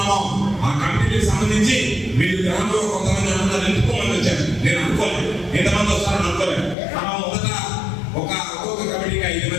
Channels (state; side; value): drops out; right; at 6.8 s